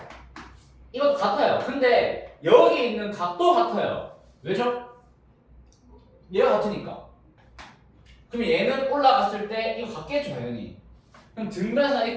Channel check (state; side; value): identical; both; correlation 1.00